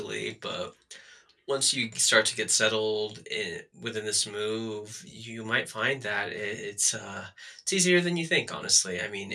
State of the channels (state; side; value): identical; both; correlation 1.00